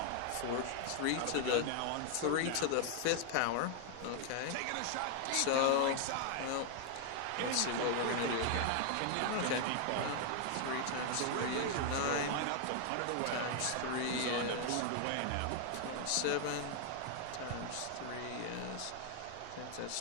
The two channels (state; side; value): different; both; correlation 0.00